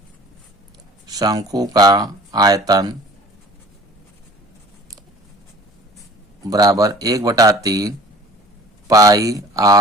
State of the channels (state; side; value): normal; both; correlation 0.47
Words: शंकु का आयतन बराबर 1/3 पाई